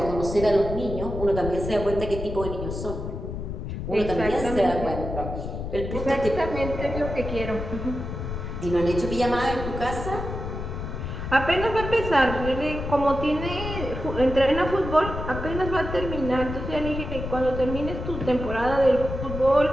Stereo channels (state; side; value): noise; left; rumble, 6 dB below the sound